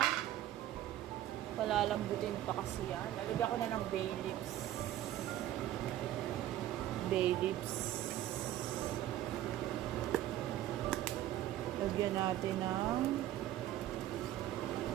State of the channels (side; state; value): left; quieter; 13.2 dB